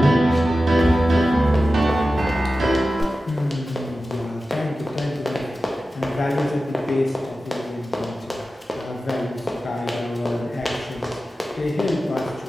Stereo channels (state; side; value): normal; both; correlation 0.94